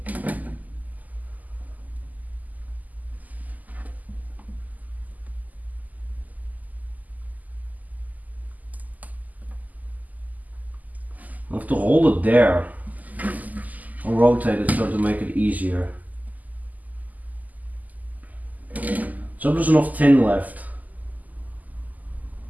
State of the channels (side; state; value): left; late; 0.080 ms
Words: I have to hold it there. I'll rotate it so to make it easier. So there's enough tin left.